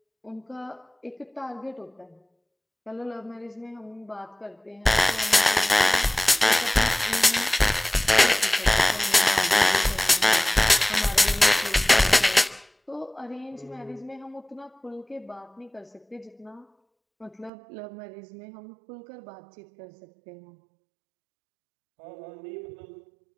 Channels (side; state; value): left; drops out; at 17.5 s